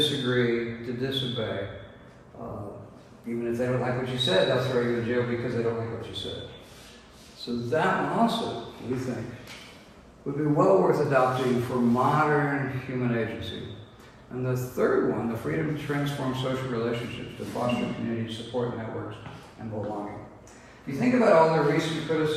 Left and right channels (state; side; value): identical; both; correlation 1.00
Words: to disobey. Even if they don't like what you said, they'll throw you in jail because they don't like what you said. So that one also, we think, would be well worth adopting for modern human agency. And the third one, the freedom to transform social relationships, to foster community support networks and belonging. If you think about all the recent